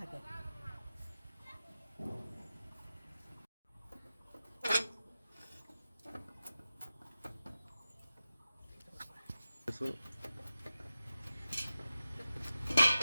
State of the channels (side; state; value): both; inverted; correlation -0.94